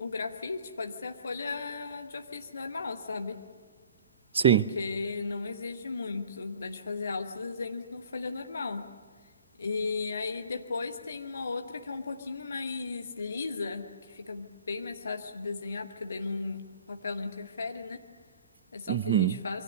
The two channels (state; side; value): inverted; both; correlation -0.54